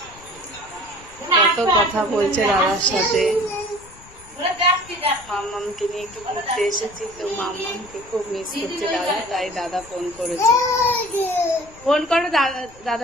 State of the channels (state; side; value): noise; left; rumble, 23 dB below the sound